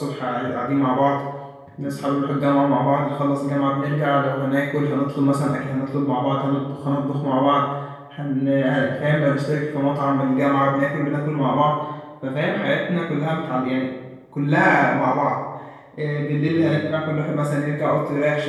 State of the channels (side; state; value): both; identical; correlation 1.00